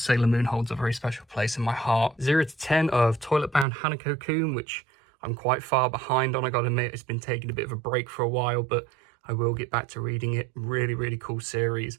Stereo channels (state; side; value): drops out; left; at 3.7 s